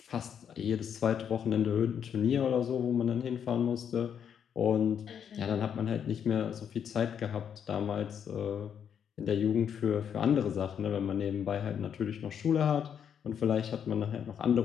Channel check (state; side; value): quieter; right; 8.2 dB